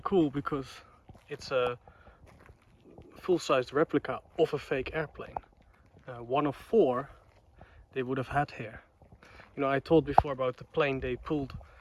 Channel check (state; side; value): identical; both; correlation 1.00